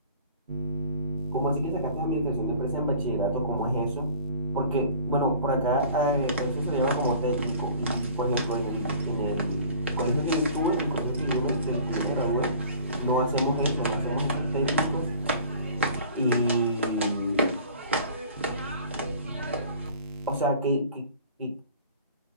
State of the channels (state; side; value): inverted; both; correlation -0.47